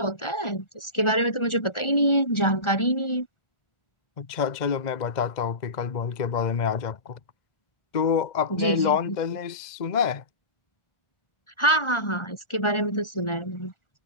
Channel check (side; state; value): right; late; 1.4 ms